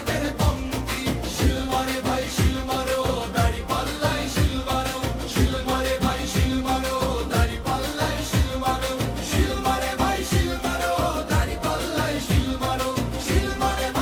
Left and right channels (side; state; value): both; identical; correlation 1.00